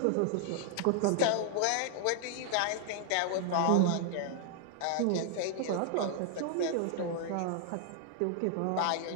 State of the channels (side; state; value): both; different; correlation 0.00